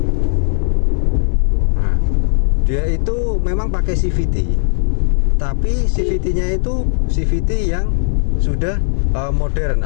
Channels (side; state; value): right; silent; 69 dB below the other